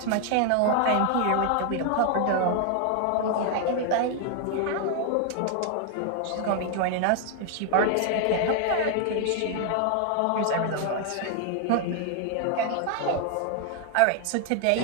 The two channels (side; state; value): both; different; correlation 0.00